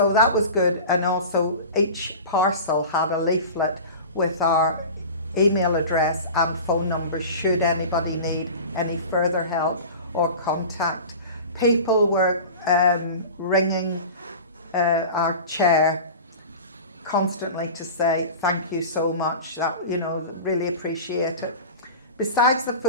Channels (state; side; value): inverted; both; correlation -0.34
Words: that was good. And also each parcel had a leaflet with our email address and phone numbers should anybody need any further help or contact. People were ringing our chair constantly to say thank you so much, that, you know, really appreciate it. Besides the